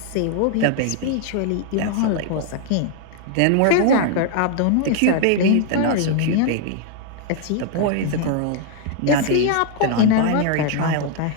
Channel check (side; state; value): both; different; correlation 0.00